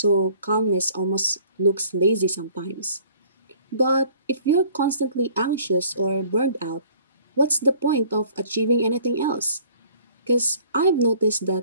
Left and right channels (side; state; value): both; inverted; correlation -0.54